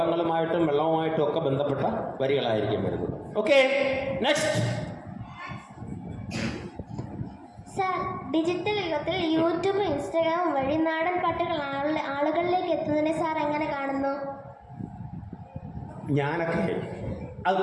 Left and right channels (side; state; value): both; identical; correlation 1.00